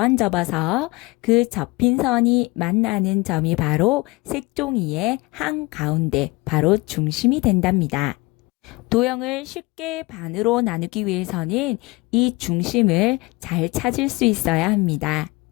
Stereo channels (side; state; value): right; quieter; 23.6 dB